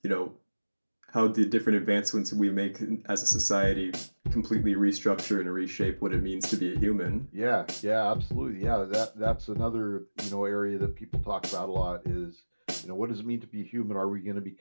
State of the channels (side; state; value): both; inverted; correlation -1.00